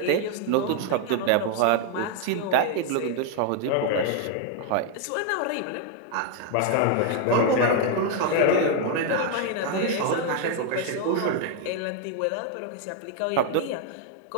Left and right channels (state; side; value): different; both; correlation 0.00